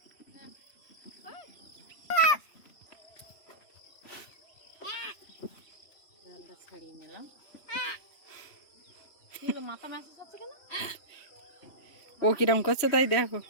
মাথা ম্যাসেজ হচ্ছে কেন? ও কিরম করছে তাই দেখো।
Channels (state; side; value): late; right; 3.1 ms